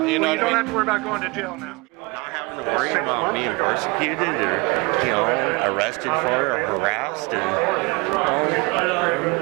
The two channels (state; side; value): quieter; left; 27.2 dB